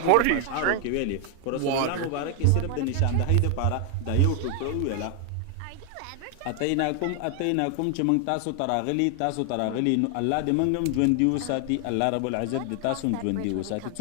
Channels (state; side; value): different; both; correlation 0.00